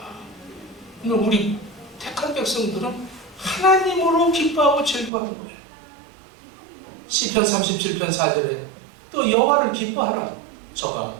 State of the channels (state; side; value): drops out; left; at 5.1 s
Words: 우리 택한 백성들은 하나님으로 기뻐하고 즐거워하는 거예요. 시편 37편 4절에 또 여호와를 기뻐하라. 저가